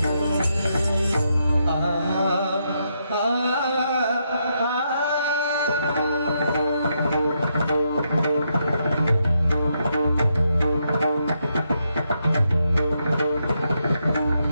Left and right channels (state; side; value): inverted; both; correlation -0.80